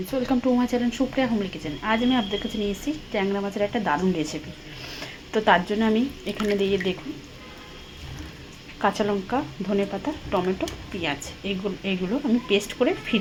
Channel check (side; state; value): both; identical; correlation 1.00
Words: welcome to my channel Supriya homely kitchen. आज मैं आपদের কাছে নিয়ে এসেছি ট্যাংরা মাছের একটা দারুণ রেসিপি। তো তার জন্য আমি এখানে দিয়ে দেখুন কাঁচা লঙ্কা, ধনেপাতা, টমেটো, পেঁয়াজ এইগুলো আমি পেস্ট করে